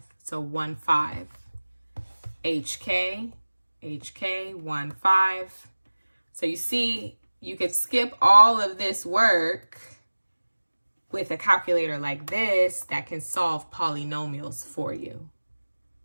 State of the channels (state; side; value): inverted; both; correlation -1.00